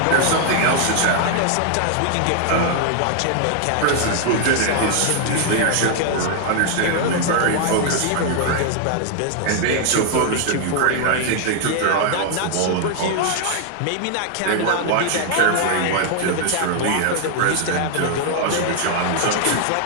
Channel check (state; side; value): different; both; correlation 0.00